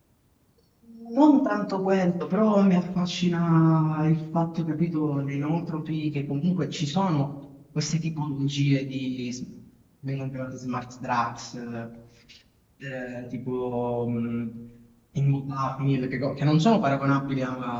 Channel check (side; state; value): both; identical; correlation 1.00